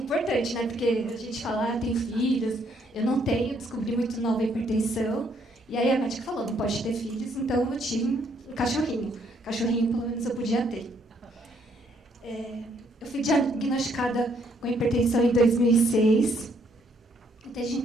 né? Porque a gente fala, tem filhos, eu não tenho, descobri muito nova a hipertensão. E aí a médica falou, não pode ter filhos, então eu tive um cachorrinho. Cachorrinho, pelo menos, eu podia ter. Eu fui diagnosticada com hipertensão em 2006. Desde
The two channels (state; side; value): normal; both; correlation 0.69